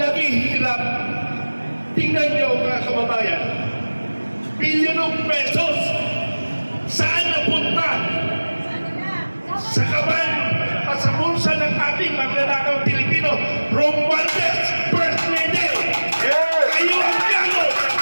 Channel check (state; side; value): inverted; both; correlation -1.00